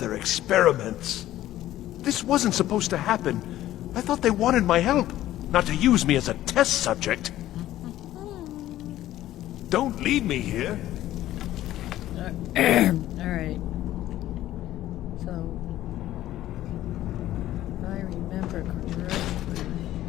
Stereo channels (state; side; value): quieter; right; 14.0 dB